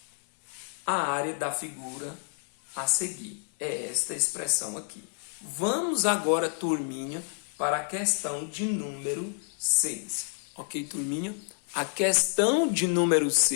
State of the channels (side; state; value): right; silent; 58 dB below the other